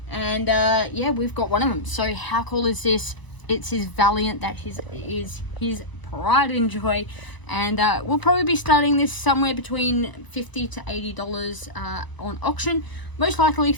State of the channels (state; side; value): late; right; 1.0 ms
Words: and yeah, we've got one of them. So how cool is this? It's his Valiant that is his pride and joy, and we'll probably be starting this somewhere between $50 to $80 on auction. Most likely